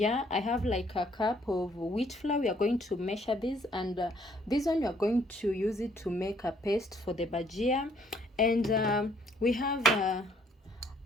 I have like a cup of wheat flour. We are going to measure this, and this one we are going to use it to make a paste for the bhajia. And we have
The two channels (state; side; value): normal; both; correlation 0.65